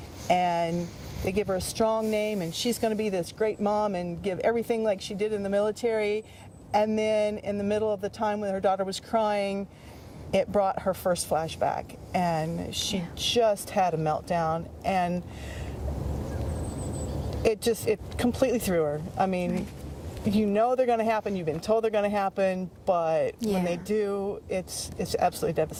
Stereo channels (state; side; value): identical; both; correlation 1.00